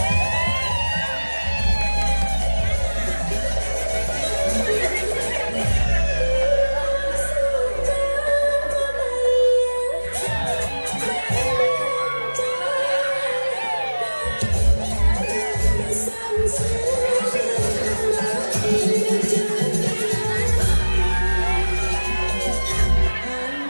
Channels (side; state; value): both; inverted; correlation -1.00